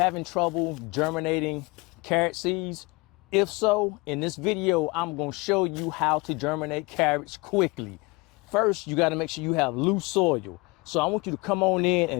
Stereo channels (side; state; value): right; quieter; 25.9 dB